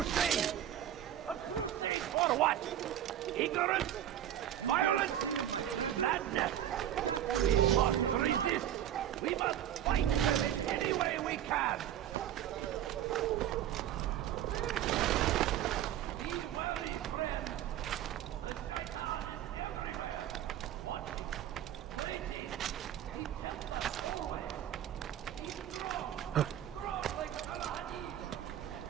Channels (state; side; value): quieter; left; 11.2 dB